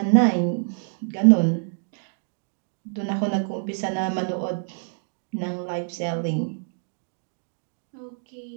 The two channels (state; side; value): silent; left; 61 dB below the other